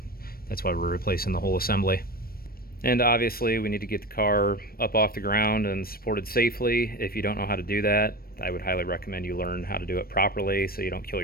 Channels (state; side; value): late; right; 0.44 ms